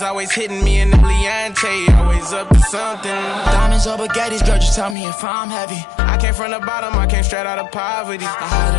always hitting me in the Leontay, always up to something. Diamonds or baguettes, girl, just tell me if I'm heavy. I came from the bottom, I came straight out of poverty. I had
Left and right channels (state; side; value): drops out; right; at 5.0 s